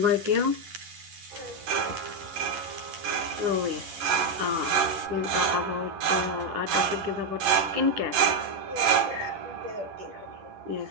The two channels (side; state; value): left; late; 10 ms